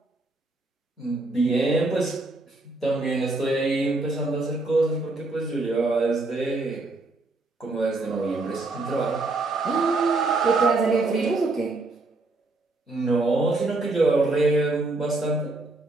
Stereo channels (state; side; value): quieter; left; 3.2 dB